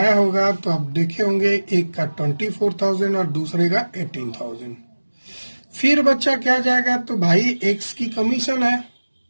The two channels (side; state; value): both; inverted; correlation -1.00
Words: होगा तो आप देखे होंगे, एक का 24,000 और दूसरे का 18,000। फिर बच्चा क्या जाएगा, तो भाई एक्स की कमीशन है